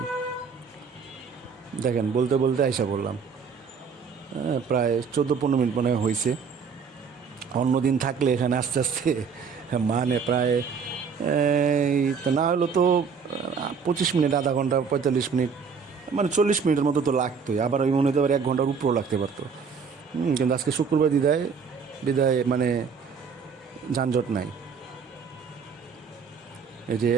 দেখেন বলতে বলতে আইসা পড়লাম, প্রায় 14-15 মিনিট মনে হয়েছে। অন্যদিন থাকলে এখানে আস্তে আস্তে মানে প্রায় তো না হলো তো 25 মিনিট, আধা ঘন্টা, 45 মিনিট, মানে 40 মিনিটের মতো তো লাগতোই, আবার ওই মনে হতে পারে 1 ঘন্টার উপরেও লাগতে পারতো। কিন্তু আজকে শুক্রবার বিদায় মানে যানজট নাই। এই যে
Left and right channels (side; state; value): left; quieter; 5.9 dB